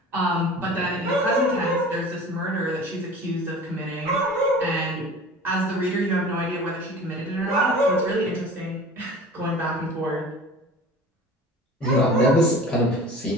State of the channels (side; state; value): both; normal; correlation 0.41